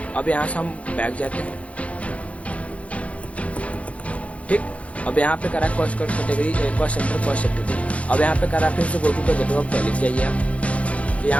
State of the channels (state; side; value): late; right; 0.064 ms